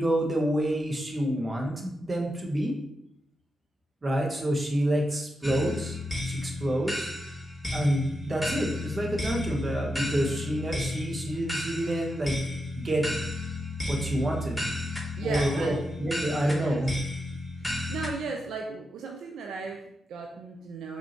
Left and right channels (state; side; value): normal; both; correlation 0.87